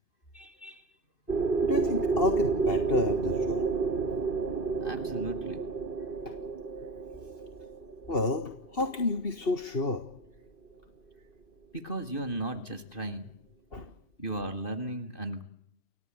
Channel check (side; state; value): right; late; 2.8 ms